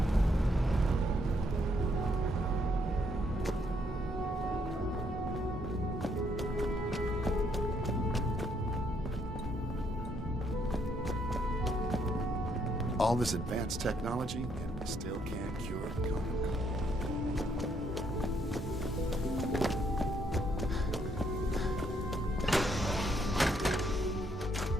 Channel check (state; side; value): normal; both; correlation 0.72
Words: All this advanced technology, and we still can't cure the common cold.